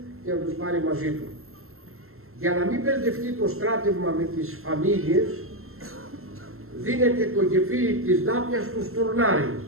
και να τους πάρει μαζί του. Για να μην μπερδευτεί το στράτευμα με τις φαμίλιες, δίνεται το γεφύρι της Δάπιας του Στουρνάρη.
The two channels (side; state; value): left; late; 0.62 ms